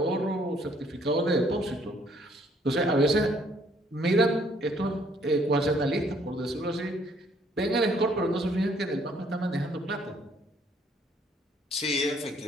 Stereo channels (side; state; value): both; normal; correlation 0.64